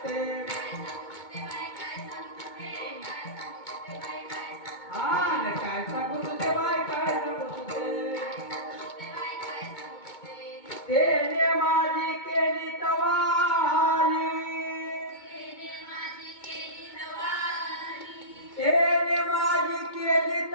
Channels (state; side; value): late; right; 2.2 ms